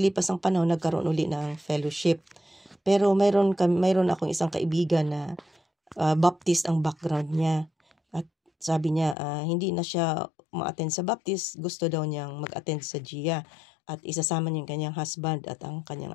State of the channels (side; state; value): right; drops out; at 9.2 s